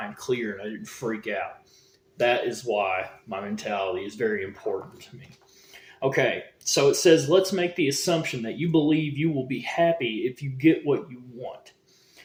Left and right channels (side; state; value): both; identical; correlation 1.00